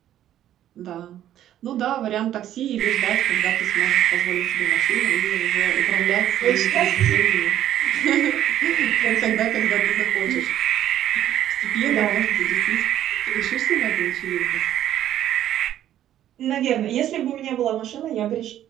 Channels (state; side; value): quieter; left; 11.7 dB